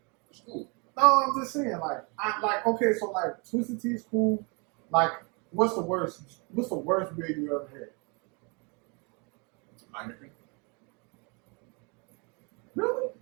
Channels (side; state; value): left; quieter; 32.4 dB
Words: It's cool. No, I'm just saying, okay, so like twisted tea is cool. Like, what's the worst beer you ever had? Heineken. Really?